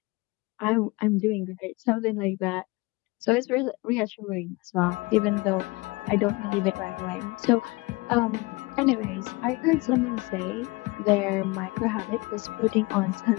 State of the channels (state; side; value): quieter; right; 24.2 dB